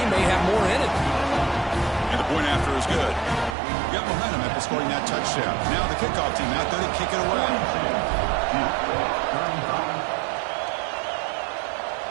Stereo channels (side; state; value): left; drops out; at 3.6 s